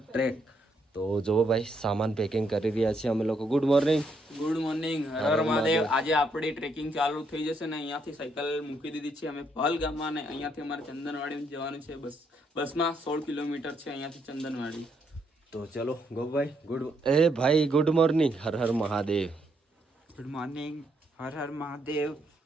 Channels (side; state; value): both; normal; correlation 0.75